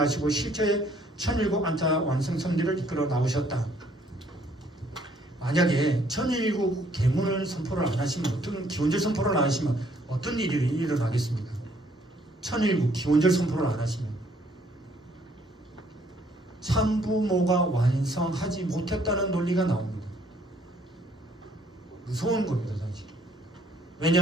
실체의 천일국 안타 완성 섭리를 이끌어 나오셨다. 만약에 천일국 계문을 선포를 안 하시면, 어떤 기원절 선포를 안 하시면 어떤 일이 일어나겠습니까? 천일국 기원절 선포를 안 하시면 참부모가 완성하지 못했다는 논리가 나옵니다. 무서운 겁니다, 사실.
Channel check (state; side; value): normal; both; correlation 0.64